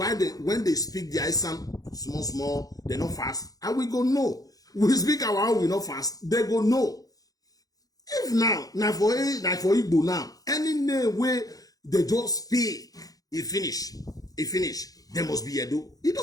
when they speak the Esan small, they not fast. And we go no. We speak our own, we not fast. They go no. If now for Igbo now, any name where they just speak, it finish. There must be Edo. It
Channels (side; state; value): right; late; 0.18 ms